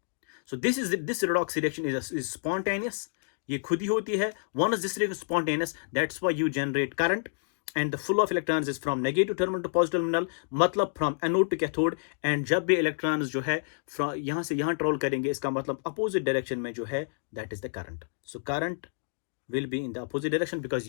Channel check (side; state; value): right; silent; digital silence